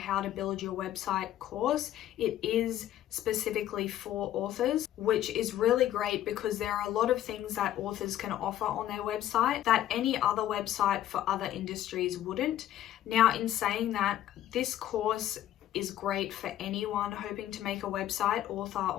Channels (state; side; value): quieter; right; 12.6 dB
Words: to build your website course, it is specifically for authors, which is really great because there are a lot of things that authors can offer on their website that any other website for other industries wouldn't. Now, in saying that, this course is great for anyone hoping to make a website, author